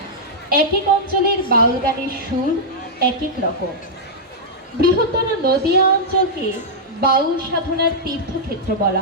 এক এক অঞ্চলের বাউল গানের সুর এক এক রকম। বৃহত্তর নদিয়া অঞ্চলকে বাউল সাধনার তীর্থক্ষেত্র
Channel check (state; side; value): normal; both; correlation -0.07